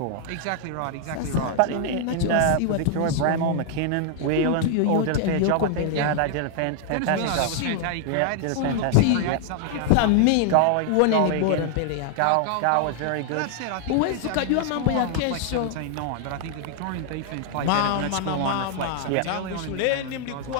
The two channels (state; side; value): different; both; correlation 0.00